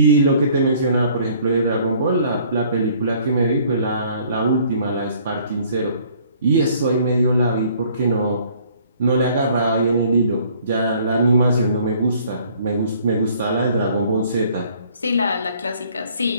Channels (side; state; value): both; inverted; correlation -0.58